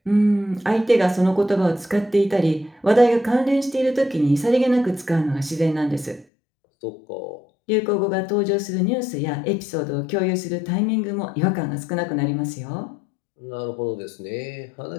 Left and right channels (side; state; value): right; drops out; at 6.2 s